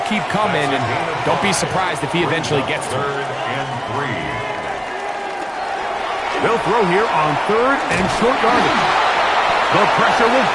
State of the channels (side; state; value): both; identical; correlation 1.00